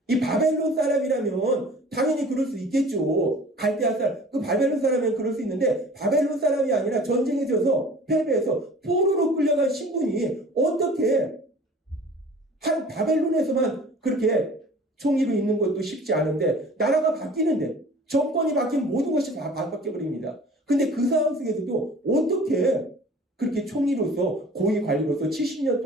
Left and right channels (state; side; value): normal; both; correlation 0.46